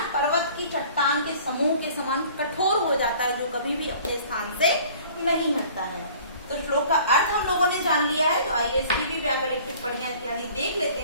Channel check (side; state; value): both; inverted; correlation -0.50